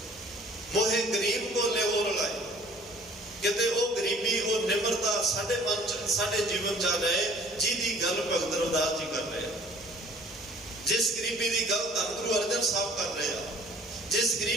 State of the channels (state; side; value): noise; right; hum, 27 dB below the sound